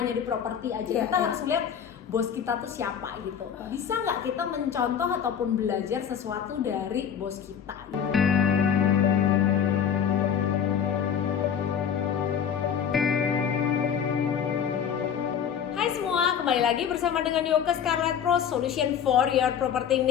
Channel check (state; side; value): quieter; right; 8.1 dB